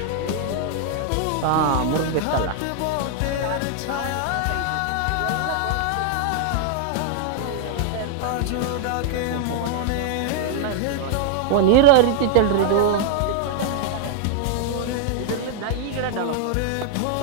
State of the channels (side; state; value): both; different; correlation 0.00